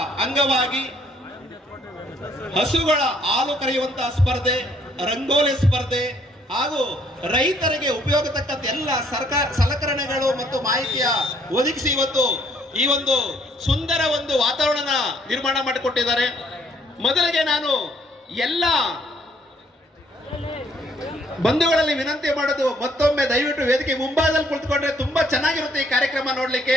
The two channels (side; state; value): both; normal; correlation 0.65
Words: ಅಂಗವಾಗಿ ಹಸುಗಳ ಹಾಲು ಕರೆಯುವಂತಹ ಸ್ಪರ್ಧೆ, ರಂಗೋಲಿ ಸ್ಪರ್ಧೆ ಹಾಗೂ ರೈತರಿಗೆ ಉಪಯೋಗ ತಕ್ಕಂತ ಎಲ್ಲ ಸರ್ಕಾರ ಸಲಕರಣೆಗಳು ಮತ್ತು ಮಾಹಿತಿಯ ಒದಗಿಸಿ ಇವತ್ತು ಈ ಒಂದು ಸುಂದರ ಒಂದು ವಾತಾವರಣ ನಿರ್ಮಾಣ ಮಾಡಿಕೊಟ್ಟಿದ್ದಾರೆ. ಮೊದಲಿಗೆ ನಾನು ಎಲ್ಲ ಬಂಧುಗಳಲ್ಲಿ ವಿನಂತಿ ಮಾಡೋದು, ಮತ್ತೊಮ್ಮೆ ದಯವಿಟ್ಟು ವೇದಿಕೆ ಮುಂಭಾಗದಲ್ಲಿ ಕುಳಿತುಕೊಂಡ್ರೆ ತುಂಬಾ ಚೆನ್ನಾಗಿರುತ್ತೆ ಈ ಕಾರ್ಯಕ್ರಮ